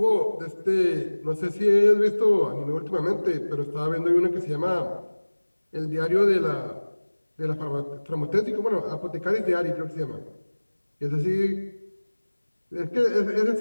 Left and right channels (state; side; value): inverted; both; correlation -1.00